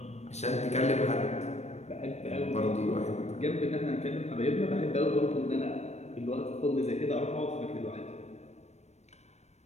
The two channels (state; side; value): late; right; 0.32 ms